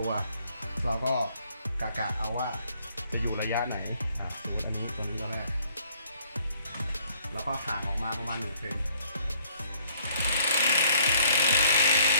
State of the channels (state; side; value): inverted; both; correlation -0.64